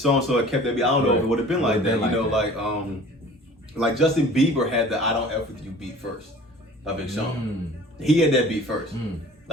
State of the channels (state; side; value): normal; both; correlation 0.45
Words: had kept that beat. I don't know if it would have been like that. You know, like Justin Bieber had the I Don't F With You beat first. By Big Sean. He had that beat first.